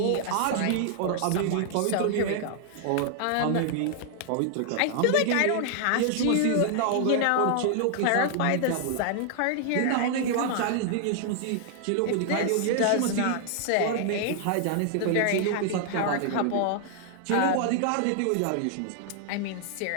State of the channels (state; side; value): different; both; correlation 0.00